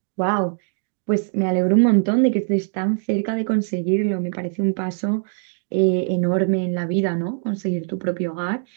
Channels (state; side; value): silent; left; digital silence